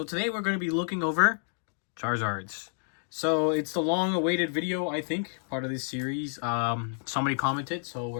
today we're going to be looking over Charizards. So it's the long-awaited video, I think, part of this series. Somebody commented, so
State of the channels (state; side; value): silent; right; digital silence